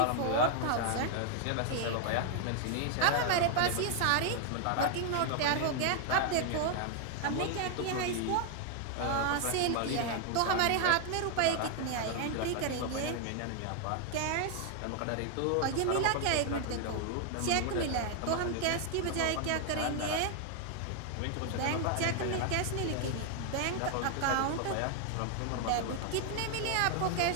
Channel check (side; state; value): both; different; correlation 0.00